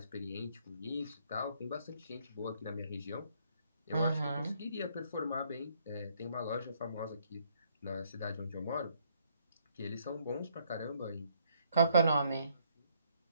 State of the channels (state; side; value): inverted; both; correlation -0.69